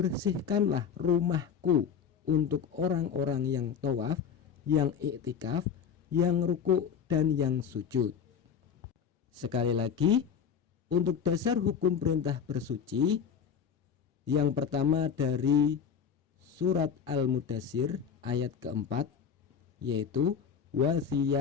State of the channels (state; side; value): quieter; right; 7.3 dB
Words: rumahku untuk orang-orang yang tawaf, yang iktikaf, yang ruku' dan yang sujud. Sekali lagi, untuk dasar hukum perintah bersuci, yang pertama dari surat Al-Mudassir ayat keempat, yaitu wa